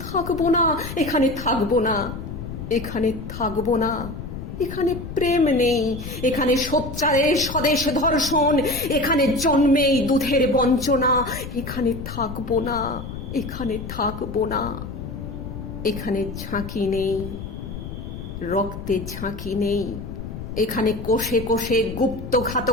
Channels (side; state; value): left; noise; rumble, 9 dB below the sound